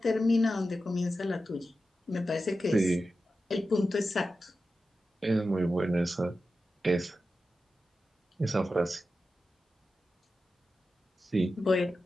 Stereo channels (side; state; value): both; normal; correlation 0.92